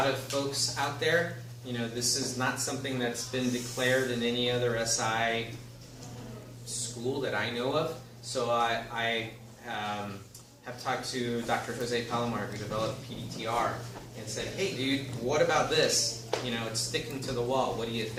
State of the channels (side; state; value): both; identical; correlation 1.00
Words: of folks out there. You know, this is not something that's been declared in any other SI school that I know of. So I have talked to Dr. Jose Palomar, who developed PDTR, and said, hey, dude, what about this? You know, it's sticking to the wall. What do you